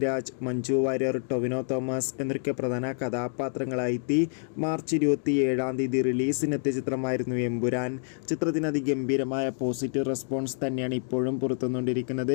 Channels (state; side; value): silent; right; digital silence